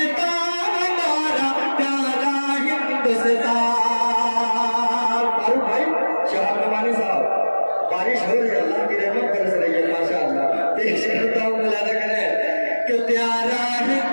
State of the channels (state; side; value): inverted; both; correlation -1.00